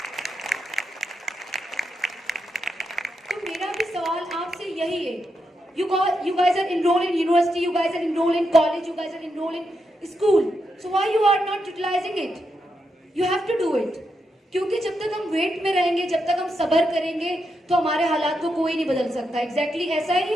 तो मेरा भी सवाल आपसे यही है, you guys are enrolled in university, you guys are enrolled in college, you guys are enrolled in school, so why you are not utilizing it? You have to do it. क्योंकि जब तक हम वेट में रहेंगे, जब तक हम सब्र करेंगे, तो हमारे हालात को कोई नहीं बदल सकता। एग्जैक्टली ऐसा ही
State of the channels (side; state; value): both; normal; correlation 0.84